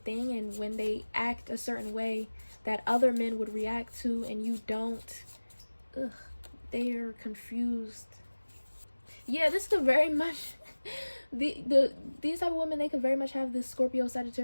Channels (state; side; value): inverted; both; correlation -1.00